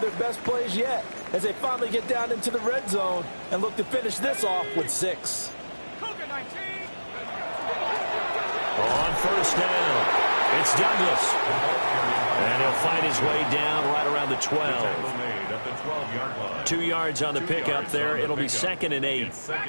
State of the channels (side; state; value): both; inverted; correlation -1.00